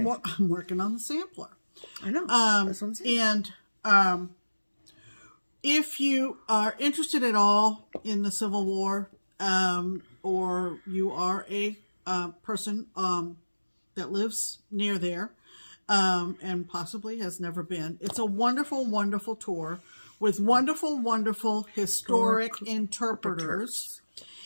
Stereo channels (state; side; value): inverted; both; correlation -1.00